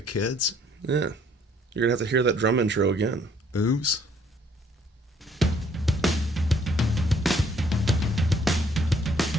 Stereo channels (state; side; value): normal; both; correlation 0.63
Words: kids. Yeah. You're going to have to hear that drum intro again. Oops.